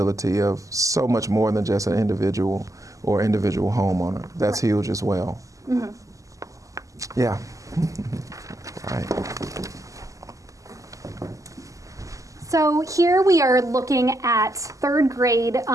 of so much more than just an individual or individual homeowner. That's huge as well. Yeah. Right. So here we are looking at 3rd grade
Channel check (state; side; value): late; left; 0.16 ms